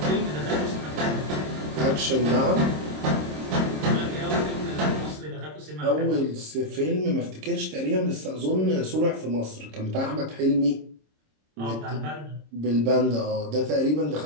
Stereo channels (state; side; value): late; left; 26 ms